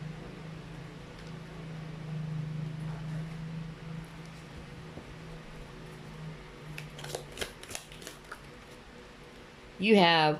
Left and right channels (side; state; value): both; identical; correlation 1.00